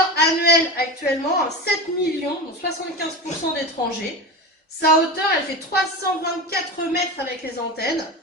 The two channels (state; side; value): normal; both; correlation 0.26